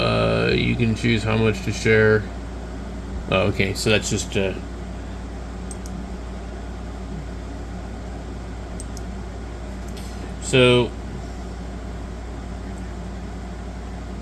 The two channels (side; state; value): both; identical; correlation 1.00